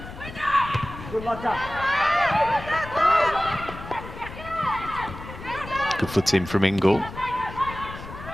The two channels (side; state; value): left; noise; rumble, 12 dB below the sound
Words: Good foot in from Ingle.